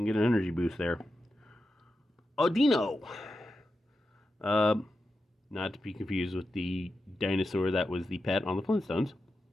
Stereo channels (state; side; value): normal; both; correlation 0.90